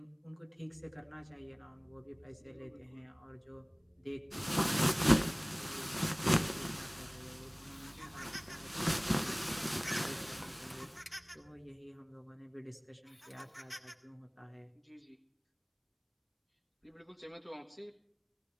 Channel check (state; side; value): identical; both; correlation 1.00